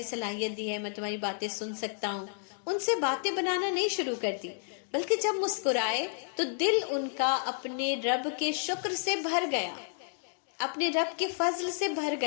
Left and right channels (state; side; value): silent; right; digital silence